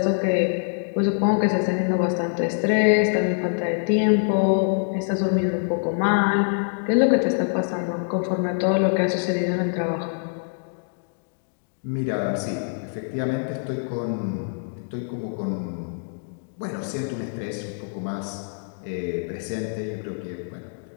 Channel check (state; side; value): silent; right; digital silence